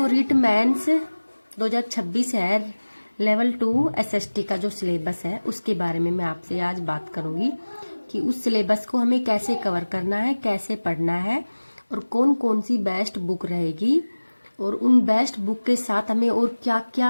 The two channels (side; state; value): both; inverted; correlation -1.00